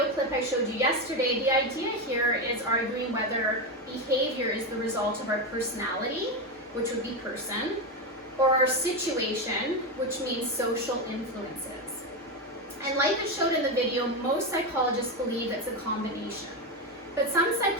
clip I showed you yesterday, the idea here is arguing whether behavior is the result of our personality, which would be person, or our situation, which means social influences. And like I showed in the video, most psychologists believe it's a combination. But some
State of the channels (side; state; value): both; normal; correlation 0.12